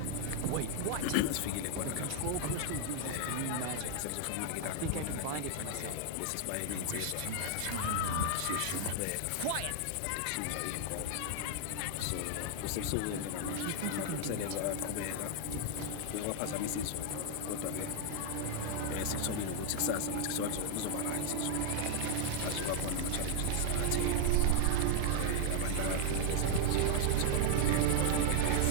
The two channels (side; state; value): both; different; correlation 0.00